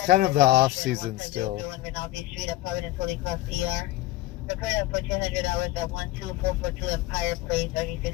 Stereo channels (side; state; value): right; quieter; 16.5 dB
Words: kind of the off season still. Street at Providence Holy Cross ER. Prepared up for 200 hours at 12442 Empire Place.